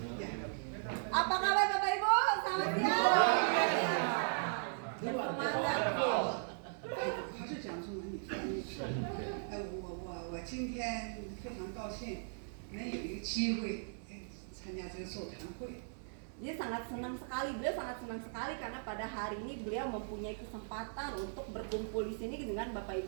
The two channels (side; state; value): left; silent; 53 dB below the other